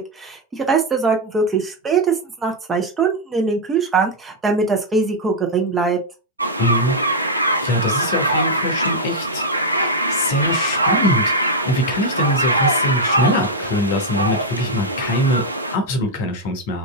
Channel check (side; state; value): both; normal; correlation -0.02